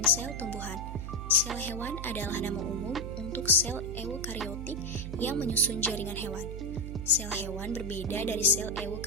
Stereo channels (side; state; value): right; noise; hum, 6 dB below the sound